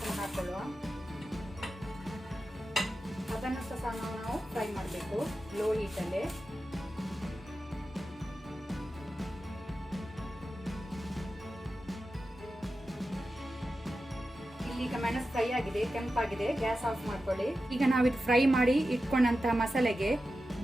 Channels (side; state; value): both; normal; correlation 0.92